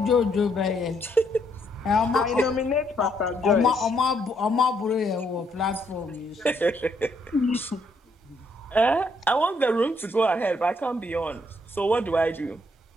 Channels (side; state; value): both; normal; correlation 0.72